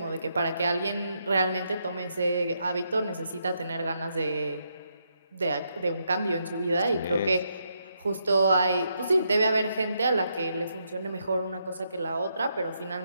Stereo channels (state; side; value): inverted; both; correlation -0.79